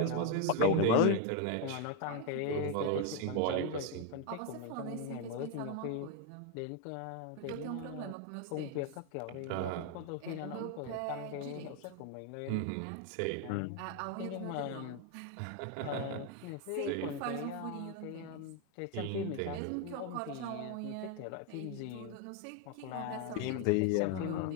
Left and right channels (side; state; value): both; different; correlation 0.01